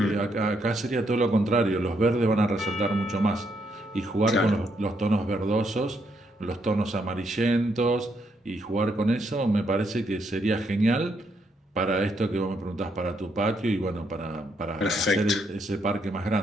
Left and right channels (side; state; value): both; normal; correlation 0.76